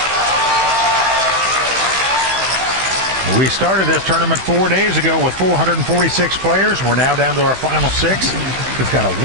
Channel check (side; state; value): left; late; 16 ms